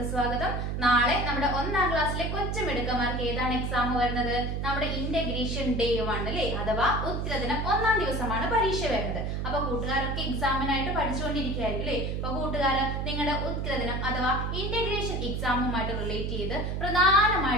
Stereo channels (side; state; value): right; noise; hum, 2 dB below the sound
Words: സ്വാഗതം. നാളെ നമ്മുടെ 1ാം ക്ലാസ്സിലെ കൊച്ചുമിടുക്കന്മാർക്ക് ഏതാണ് എക്സാം വരുന്നത്? നമ്മുടെ ഇന്റഗ്രേഷൻ ഡേ 1 അല്ലേ, അഥവാ ഉത്തരദിനം 1ാം ദിവസമാണ് പരീക്ഷ വരുന്നത്. അപ്പൊ കൂട്ടുകാരൊക്കെ എക്സാമിനായിട്ട് പഠിച്ചുകൊണ്ടിരിക്കുകയായിരിക്കും അല്ലേ. അപ്പൊ കൂട്ടുകാര് നിങ്ങളുടെ ഉത്തരദിനം അഥവാ ഇന്റഗ്രേഷൻ എക്സാമുമായിട്ട് റിലേറ്റ് ചെയ്ത്